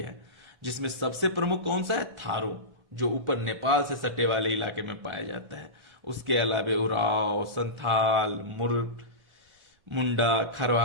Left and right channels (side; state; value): left; late; 1.4 ms